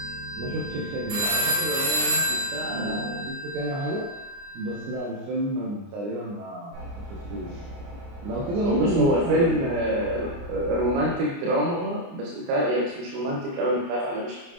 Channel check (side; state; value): left; late; 29 ms